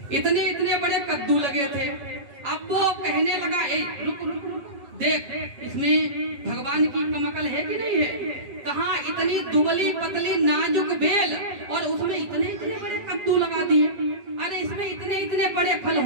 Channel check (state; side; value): late; left; 7.2 ms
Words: इतने इतने बड़े कद्दू लगे थे। अब वो कहने लगा, ए रुक रुक रुक, देख इसमें भगवान की कम अकल है कि नहीं है? कहाँ इतनी दुबली पतली नाजुक बेल और उसमें इतने इतने बड़े कद्दू लगा दिए। अरे इसमें इतने इतने बड़े फल